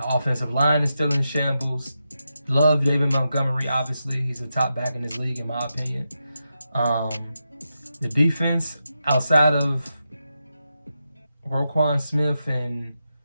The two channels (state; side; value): inverted; both; correlation -0.88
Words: offensive line is still in shambles. Love David Montgomery, obviously. He's a top back in this league, in my opinion. The defense, outside of Roquan Smith and